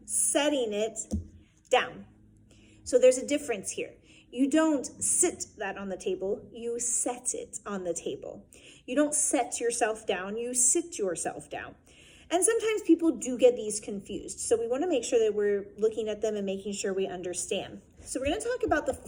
setting it down. So there's a difference here. You don't sit that on the table, you set it on the table. You don't set yourself down, you sit yourself down. And sometimes people do get these confused. So we want to make sure that we're looking at them and making sure we understand. So we're going to talk about the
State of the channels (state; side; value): identical; both; correlation 1.00